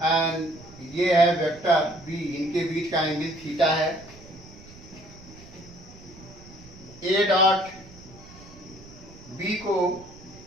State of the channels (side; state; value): right; noise; rumble, 20 dB below the sound